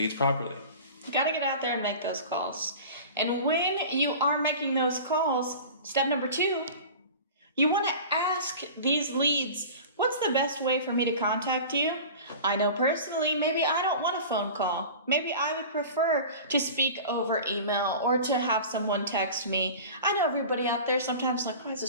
properly. You got to get out there and make those calls. And when you are making those calls, step number 2, you want to ask these leads, what's the best way for me to contact you? I know personally, maybe I don't want a phone call. Maybe I would prefer to speak over email or to have someone text me. I know everybody out there sometimes like, why is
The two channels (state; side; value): inverted; both; correlation -0.37